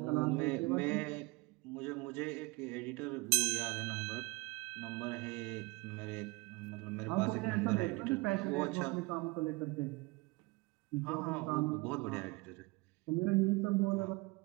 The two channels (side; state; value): left; quieter; 25.1 dB